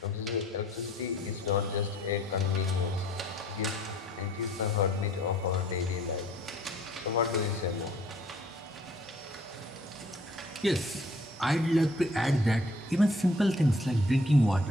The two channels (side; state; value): both; normal; correlation 0.58